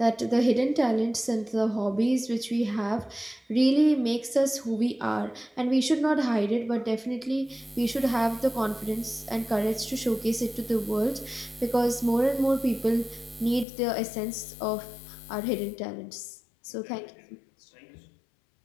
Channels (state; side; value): drops out; right; at 13.7 s